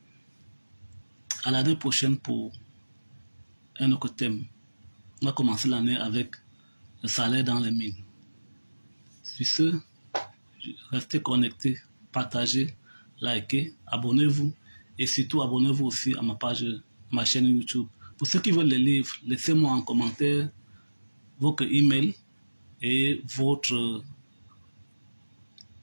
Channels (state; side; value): inverted; both; correlation -1.00